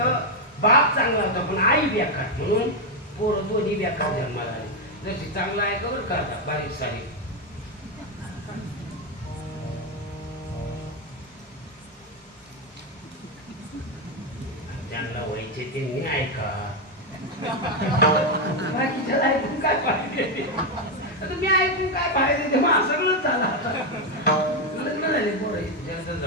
बाप चांगला होता पण आई बेकार म्हणून पोरं दोन्ही बेकार जन्माला आले. जशी चांगला आहे का बरं का बारीक सारीक. ज्यांना व्हायचे त्यांनी ऐका, बाकीच्याला ऐकून काय पाहिजे. आता मी ऐकून काय पाहिजे तेव्हा सगळंच झालं. लग्न झाले पोरं,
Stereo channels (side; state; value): both; normal; correlation 0.05